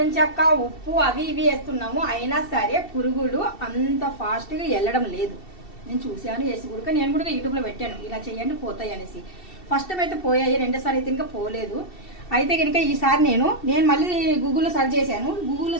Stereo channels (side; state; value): right; late; 2.7 ms